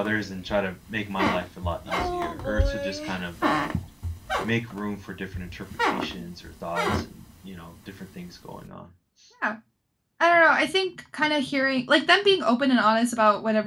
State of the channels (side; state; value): both; identical; correlation 1.00